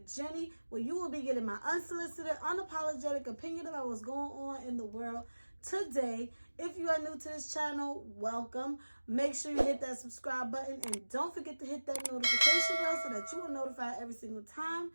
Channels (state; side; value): inverted; both; correlation -1.00